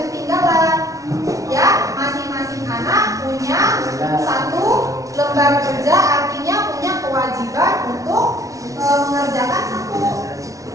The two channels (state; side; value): late; left; 0.16 ms